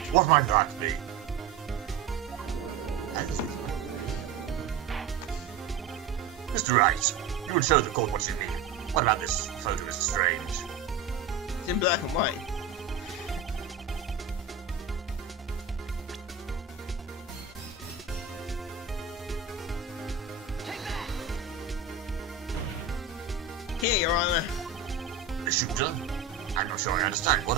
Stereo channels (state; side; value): quieter; left; 5.5 dB